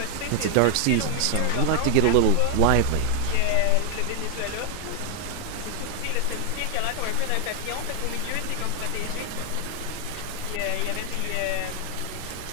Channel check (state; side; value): different; both; correlation 0.00